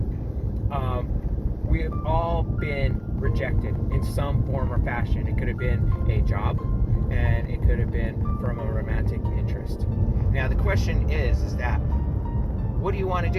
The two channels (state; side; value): identical; both; correlation 1.00